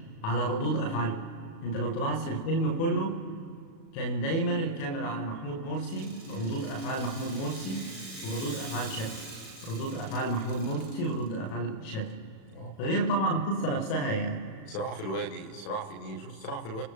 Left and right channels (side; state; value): right; late; 36 ms